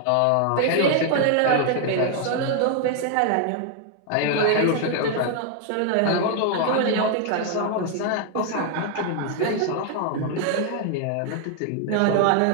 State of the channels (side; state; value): both; different; correlation 0.00